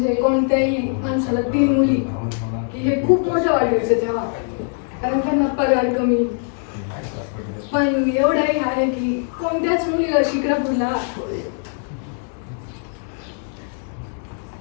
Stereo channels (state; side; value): silent; right; 57 dB below the other